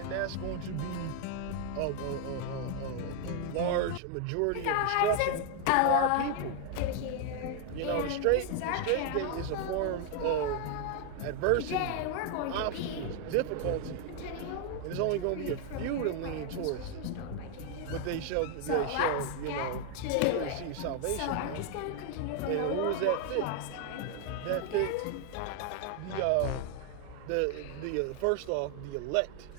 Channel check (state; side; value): different; both; correlation 0.00